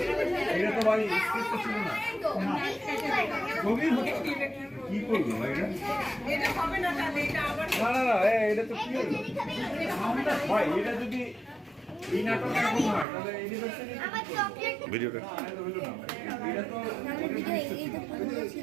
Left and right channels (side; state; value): left; drops out; at 13.1 s